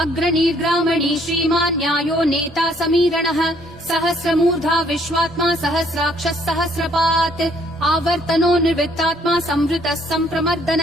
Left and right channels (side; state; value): both; normal; correlation 0.64